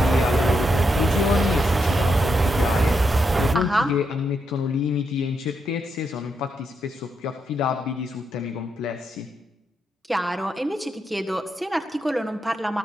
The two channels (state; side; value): normal; both; correlation 0.82